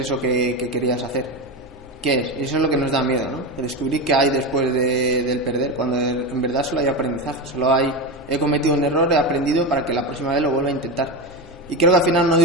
que querías hacer? ¿Qué es? Eso es lo que nos da miedo, ¿no? Descubrir qué hay después del perder, cuando en verdad solo hay aprendizaje, he cometido un error, he aprendido para que la próxima vez lo vuelva a intentar. Y creo que al final no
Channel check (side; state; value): both; normal; correlation 0.18